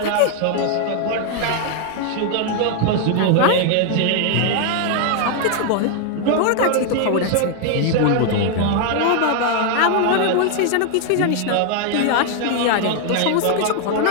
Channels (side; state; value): both; different; correlation 0.00